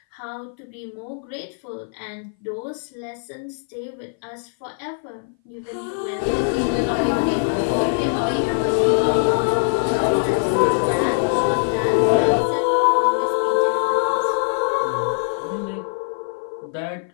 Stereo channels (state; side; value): silent; right; 59 dB below the other